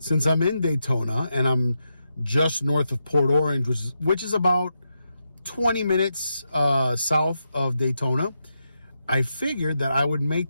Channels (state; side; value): inverted; both; correlation -0.85